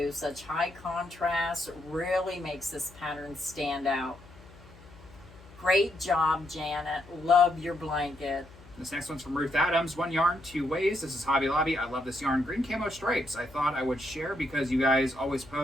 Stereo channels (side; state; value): left; noise; hum, 21 dB below the sound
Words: Such high contrast. Really makes this pattern stand out. Great job, Janet. Love your blanket. This next one's from Ruth Adams. 1 yarn, 2 ways. This is Hobby Lobby. I love this yarn. Green camo stripes. I thought I would share because you guys always